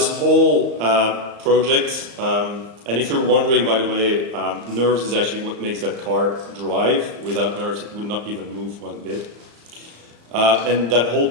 whole project, and if you're wondering, by the way, Nerves is actually what makes that car drive. Without Nerves, it would not even move one bit. And that whole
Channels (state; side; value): late; left; 35 ms